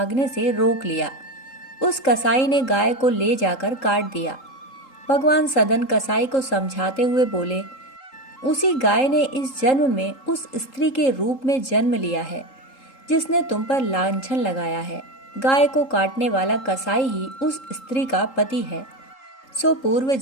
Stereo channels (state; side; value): late; right; 3.8 ms